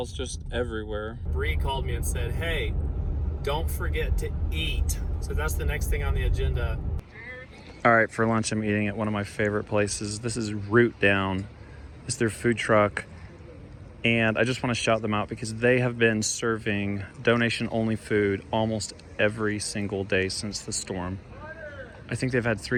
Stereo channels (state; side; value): identical; both; correlation 1.00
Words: just everywhere. Bree called me and said, hey, don't forget to eat. So that's the next thing on the agenda. All right, for lunch, I'm eating at one of my favorite places. This is Root Down. It's their food truck. And I just want to shout them out because they have been serving donation-only food almost every single day since the storm. I think they've had